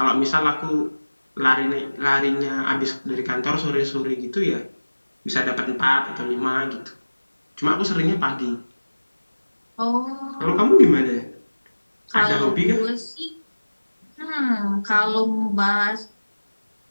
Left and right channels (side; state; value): both; inverted; correlation -1.00